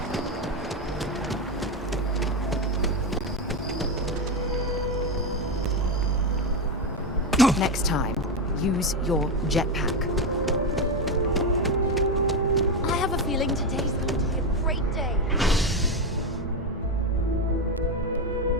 Next time, use your jetpack. I have a feeling today's going to be a great day.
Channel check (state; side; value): normal; both; correlation 0.11